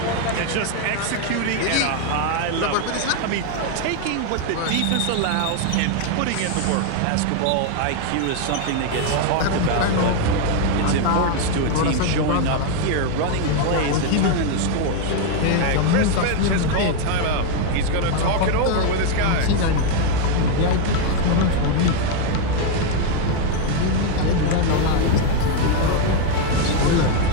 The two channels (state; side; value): different; both; correlation 0.01